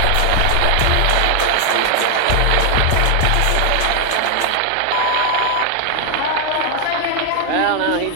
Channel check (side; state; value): both; different; correlation 0.00